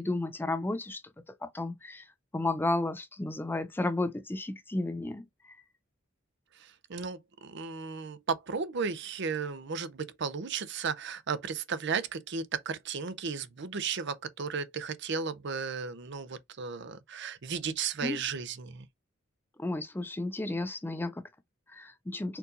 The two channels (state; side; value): normal; both; correlation 0.44